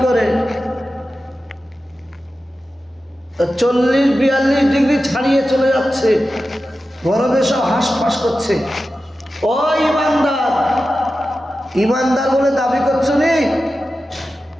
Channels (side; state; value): both; normal; correlation 0.93